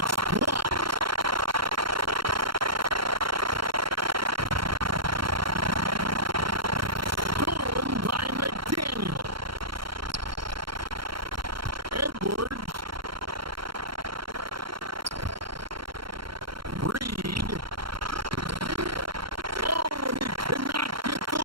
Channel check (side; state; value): left; late; 0.73 ms